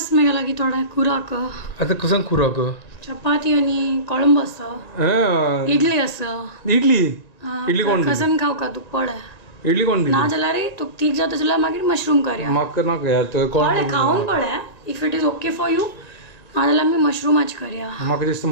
मेगा लागी थोडा खुराक आतां कसन खुराक चपाती आणि कोळंब आसा इडली आसा. इडली इडली कोण कसन खाव का तू पळय. इडली कोण ना जाल्यार तू तीग जाता जाल्यार मागीर मशरूम करया. म्हाका नाका यार तो कोण पळय खावन पळय if it is okay for you ना जाल्यार आमी मशरूमाच करया. म्हाका दिसता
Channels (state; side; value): late; right; 1.9 ms